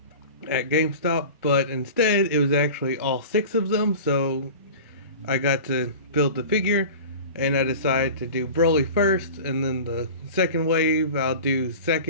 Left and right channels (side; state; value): both; inverted; correlation -0.35